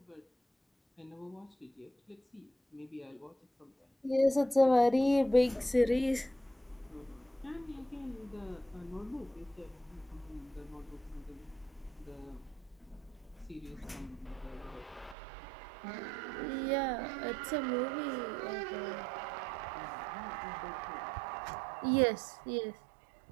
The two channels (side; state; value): left; drops out; at 15.2 s